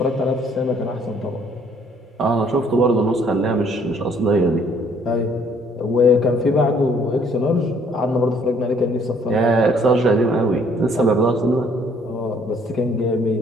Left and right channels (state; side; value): normal; both; correlation 0.62